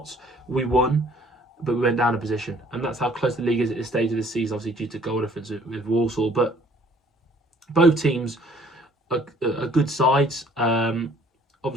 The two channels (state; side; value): normal; both; correlation 0.58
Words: we won, but we went down a position, and that's how close the league is at this stage of the season. Obviously due to goal difference with Walsall, but both teams are good sides.